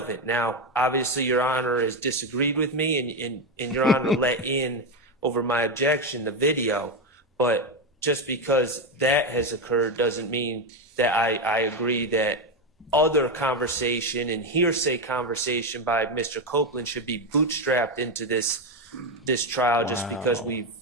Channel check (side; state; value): both; normal; correlation 0.11